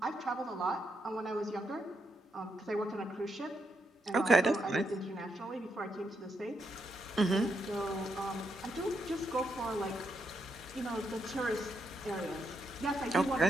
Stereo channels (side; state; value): both; normal; correlation 0.80